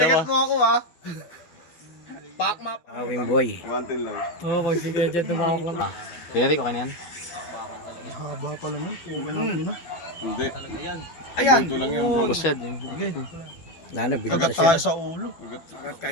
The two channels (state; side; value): late; right; 12 ms